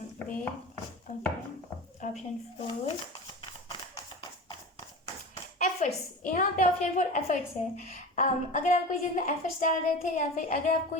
Wait, okay, option 4 efforts. यहाँ पे ऑप्शन 4 एफर्ट्स है। अगर आप कोई चीज़ में एफर्ट्स डाल रहे थे, या फिर अगर आप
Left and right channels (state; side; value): normal; both; correlation 0.31